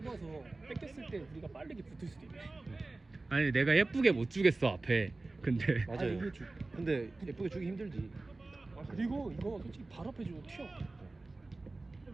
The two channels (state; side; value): quieter; left; 3.2 dB